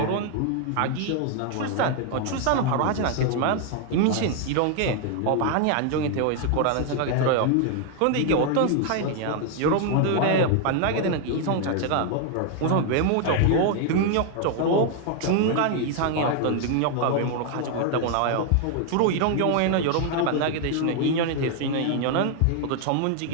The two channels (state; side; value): different; both; correlation 0.00